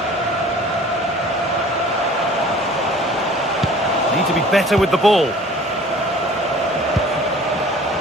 Need to be better with the ball.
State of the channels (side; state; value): both; normal; correlation 0.48